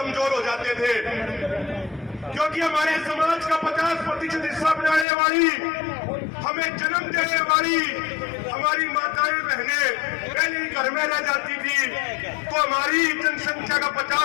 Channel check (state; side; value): drops out; right; at 5.1 s